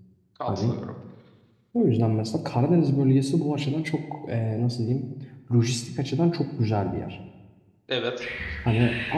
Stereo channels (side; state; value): both; identical; correlation 1.00